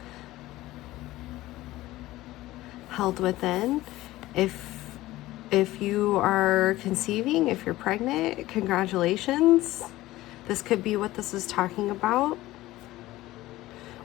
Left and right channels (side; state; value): right; quieter; 17.0 dB